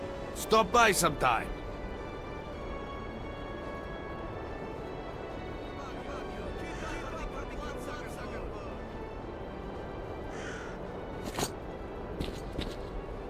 Stop by sometime.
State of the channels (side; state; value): both; identical; correlation 1.00